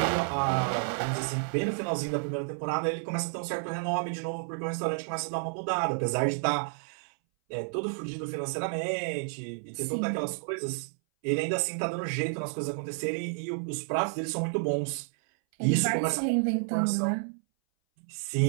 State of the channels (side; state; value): left; silent; 57 dB below the other